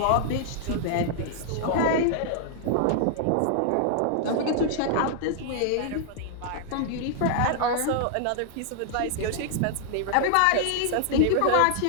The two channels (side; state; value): both; different; correlation -0.01